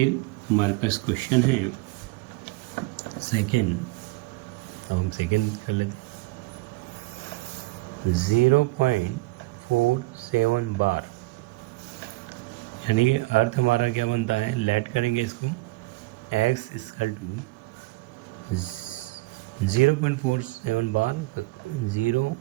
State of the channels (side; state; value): left; quieter; 21.0 dB